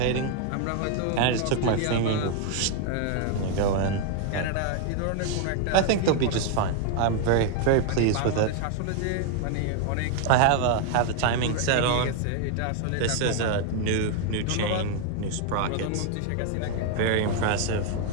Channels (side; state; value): both; different; correlation 0.01